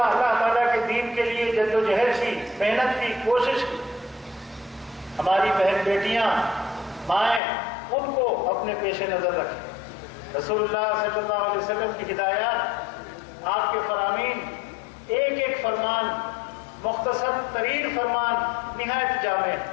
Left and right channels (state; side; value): drops out; right; at 7.4 s